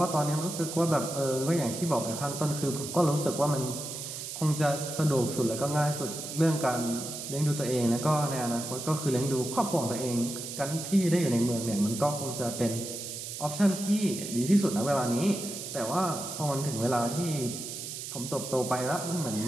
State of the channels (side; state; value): right; noise; hiss, 8 dB below the sound